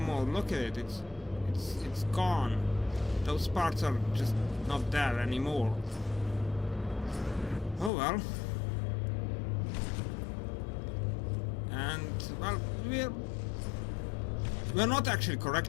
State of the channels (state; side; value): drops out; right; at 7.9 s